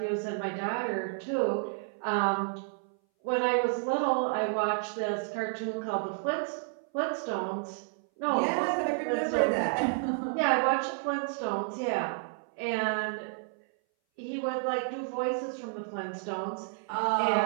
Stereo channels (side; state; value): left; silent; 57 dB below the other